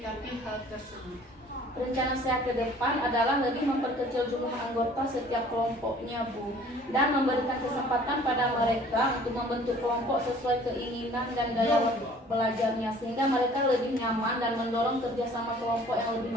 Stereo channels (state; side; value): normal; both; correlation 0.52